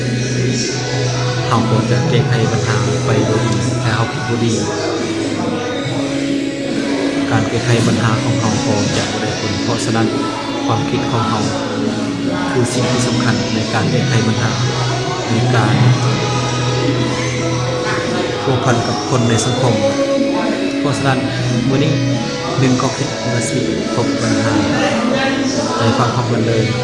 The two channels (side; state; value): both; identical; correlation 1.00